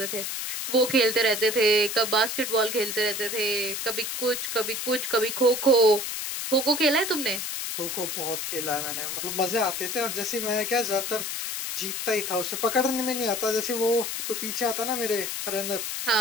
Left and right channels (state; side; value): noise; left; hiss, 4 dB below the sound